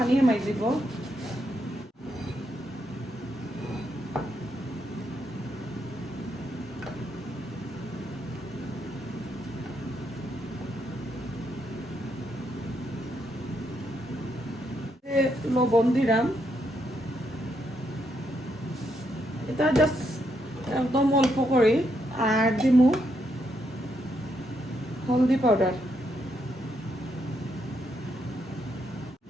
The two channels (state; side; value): normal; both; correlation 0.78